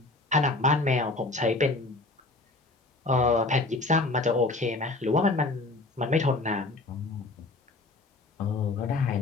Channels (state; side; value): quieter; right; 3.2 dB